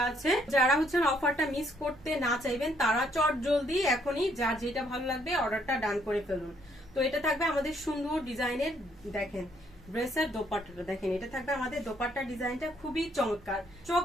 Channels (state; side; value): normal; both; correlation 0.69